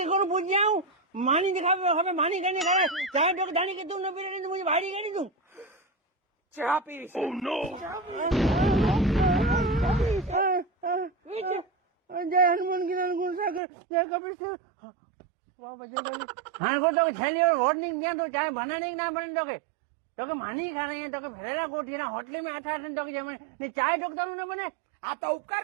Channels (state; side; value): drops out; left; at 13.6 s